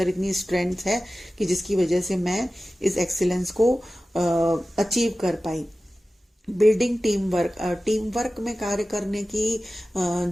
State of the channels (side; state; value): both; normal; correlation 0.95